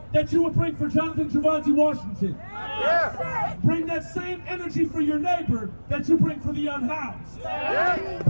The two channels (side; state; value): both; inverted; correlation -1.00